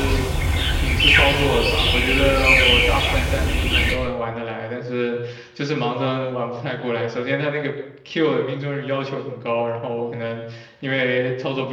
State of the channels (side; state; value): both; identical; correlation 1.00